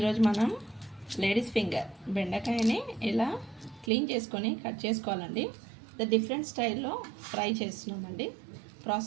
మనం లేడీస్ ఫింగర్ బెండకాయని ఇలా క్లీన్ చేసుకొని కట్ చేసుకోవాలండి. డిఫరెంట్ స్టైల్లో ఫ్రై చేస్తున్నామండి.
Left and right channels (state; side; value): drops out; left; at 3.9 s